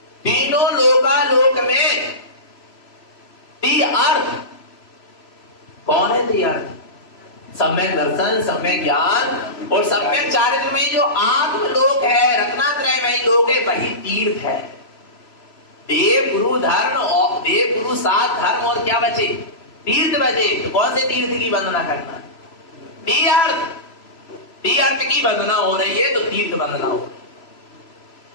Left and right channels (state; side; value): late; right; 3.0 ms